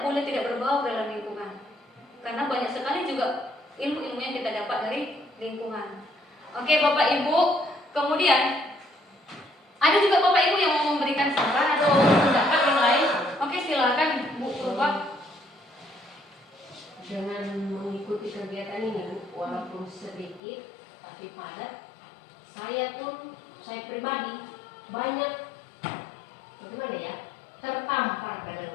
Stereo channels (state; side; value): drops out; right; at 20.4 s